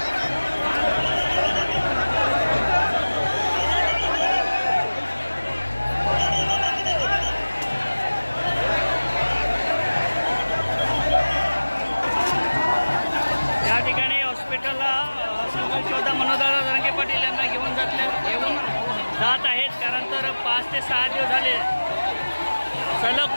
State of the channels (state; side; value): inverted; both; correlation -1.00